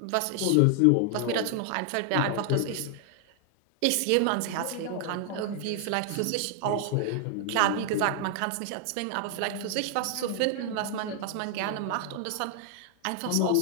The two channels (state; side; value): different; both; correlation 0.00